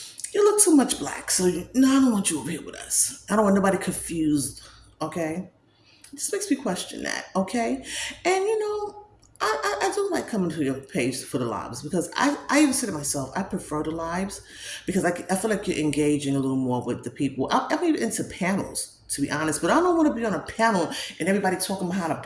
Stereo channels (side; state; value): both; identical; correlation 1.00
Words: you look too much black. So no, I don't want you over here with us. I don't want nobody confused." Okay, this makes me question that. Okay, and I do like coming to your page for the lives, because I even say to myself, I prefer the lives because I feel like you're engaging a little more with the people. I'm even into panels, to be honest, but I don't want to be on a panel and everybody talking behind a